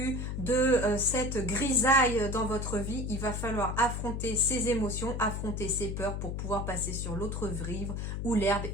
de cette grisaille dans votre vie, il va falloir affronter ces émotions, affronter ces peurs pour pouvoir passer sur l'autre rive où l'herbe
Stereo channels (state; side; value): noise; left; hum, 3 dB below the sound